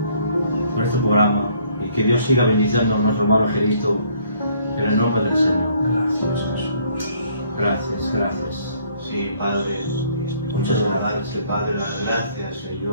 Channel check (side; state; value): both; inverted; correlation -0.63